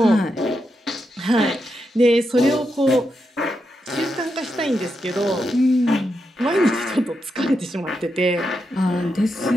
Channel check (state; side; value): normal; both; correlation 0.85